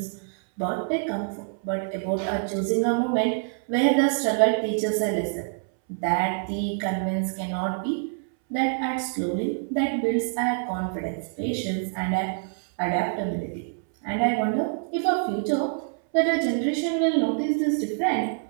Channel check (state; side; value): silent; left; 61 dB below the other